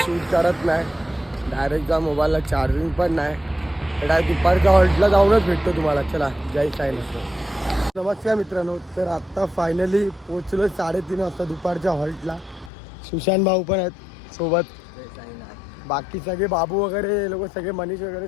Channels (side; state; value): right; drops out; at 12.7 s